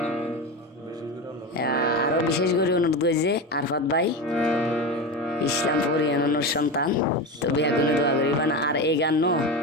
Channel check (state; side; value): normal; both; correlation 0.21